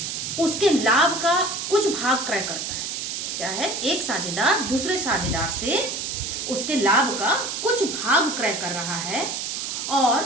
उसके लाभ का कुछ भाग क्रय करता है। क्या है? एक साझेदार दूसरे साझेदार से उसके लाभ का कुछ भाग क्रय कर रहा है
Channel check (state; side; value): noise; right; hiss, 4 dB below the sound